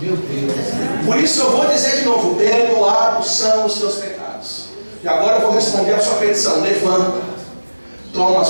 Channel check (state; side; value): inverted; both; correlation -1.00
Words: Deus. Por isso eu vou dizer de novo, perdoados são os seus pecados. E agora eu vou responder a sua petição. Levanta, toma a